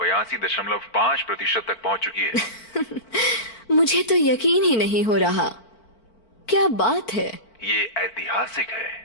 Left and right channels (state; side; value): late; right; 4.5 ms